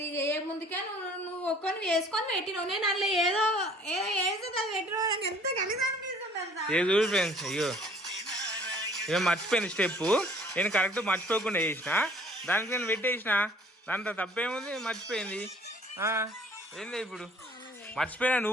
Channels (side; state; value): both; normal; correlation 0.54